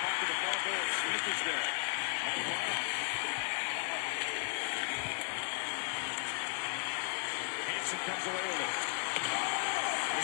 puck to the far goal. Smith is there. Hansen comes away with it.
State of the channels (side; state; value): right; silent; 54 dB below the other